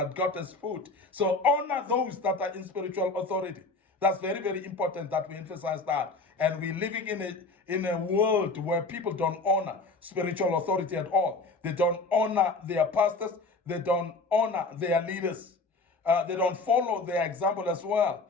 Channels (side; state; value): right; quieter; 3.6 dB